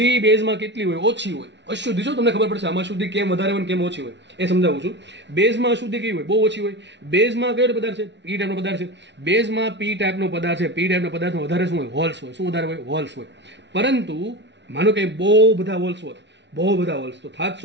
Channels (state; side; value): late; left; 0.51 ms